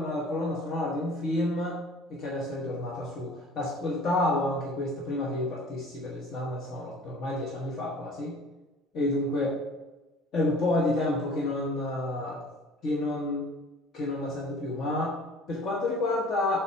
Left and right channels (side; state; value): both; normal; correlation 0.47